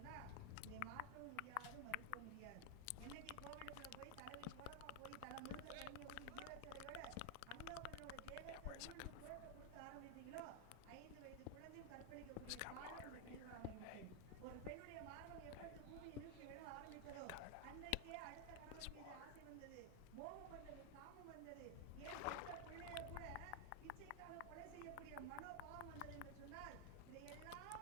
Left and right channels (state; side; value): different; both; correlation 0.00